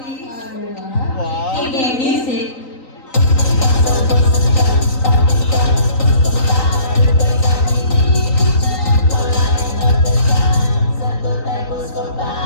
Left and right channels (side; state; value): right; late; 3.9 ms